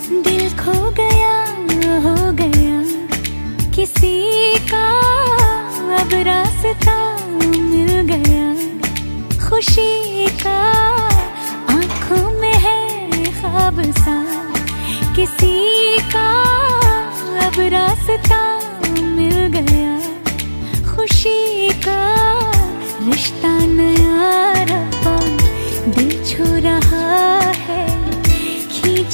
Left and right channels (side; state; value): both; inverted; correlation -1.00